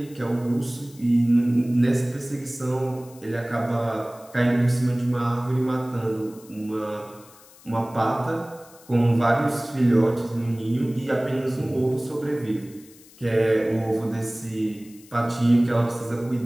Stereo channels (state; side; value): noise; left; hiss, 24 dB below the sound